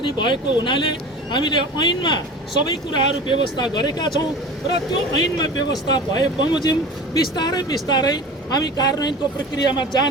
भएको हुनाले हामीले ऐनमा सबै कुराहरू व्यवस्था गरेका छौँ र त्यो ऐनमा व्यवस्था भए बमोजिम बिस्तारै हामी कार्यान्वयनको प्रक्रियामा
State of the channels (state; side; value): normal; both; correlation 0.36